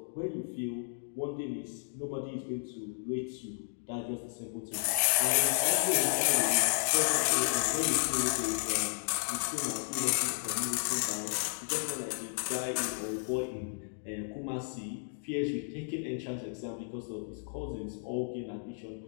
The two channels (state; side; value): silent; right; digital silence